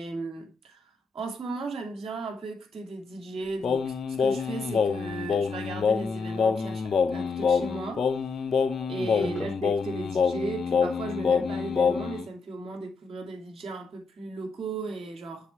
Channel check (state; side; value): quieter; right; 4.0 dB